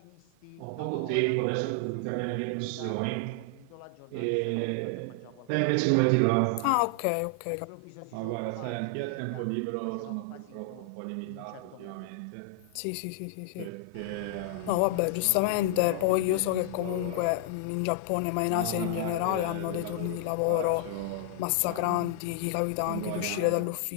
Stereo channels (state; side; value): different; both; correlation -0.01